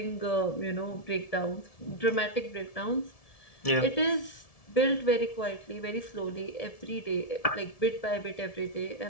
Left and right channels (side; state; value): right; late; 1.7 ms